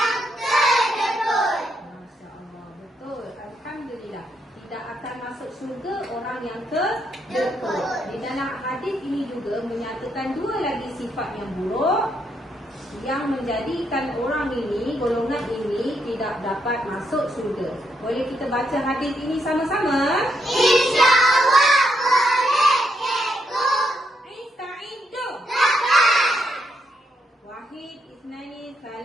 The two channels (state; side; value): normal; both; correlation 0.78